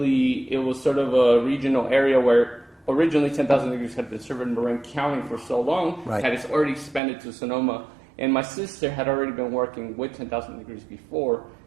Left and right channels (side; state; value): left; drops out; at 7.0 s